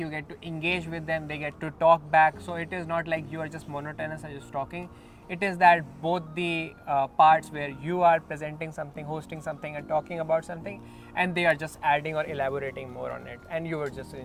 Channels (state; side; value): identical; both; correlation 1.00